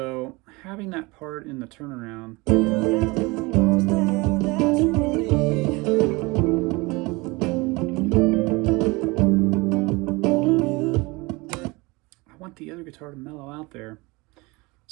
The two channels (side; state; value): left; quieter; 24.5 dB